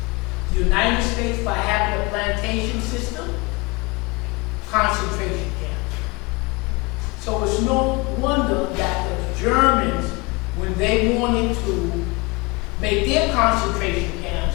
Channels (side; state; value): right; quieter; 26.0 dB